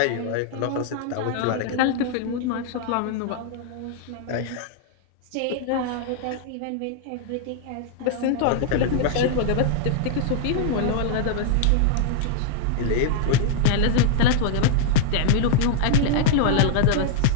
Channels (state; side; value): different; both; correlation 0.00